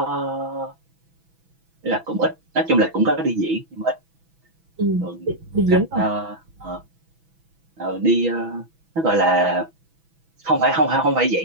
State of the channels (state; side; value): late; left; 6.1 ms